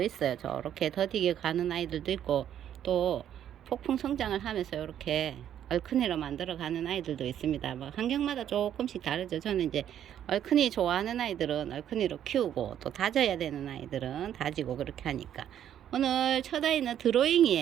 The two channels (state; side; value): quieter; left; 10.3 dB